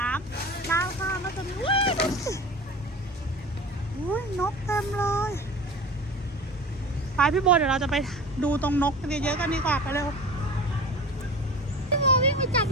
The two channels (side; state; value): both; normal; correlation 0.36